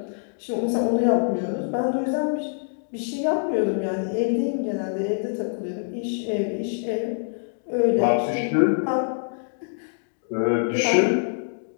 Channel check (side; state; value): right; silent; digital silence